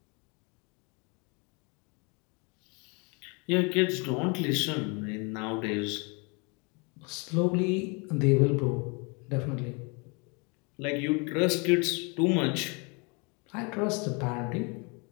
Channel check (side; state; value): right; quieter; 31.5 dB